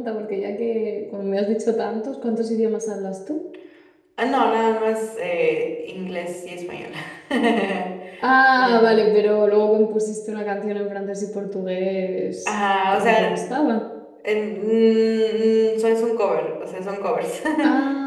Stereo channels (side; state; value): both; identical; correlation 1.00